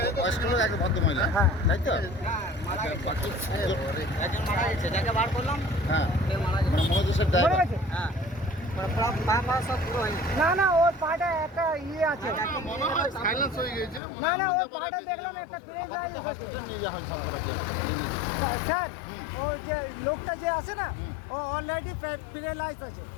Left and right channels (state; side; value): drops out; right; at 14.0 s